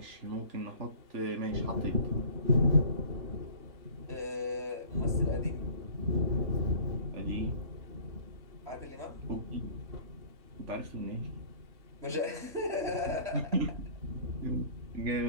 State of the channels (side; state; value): left; late; 3.0 ms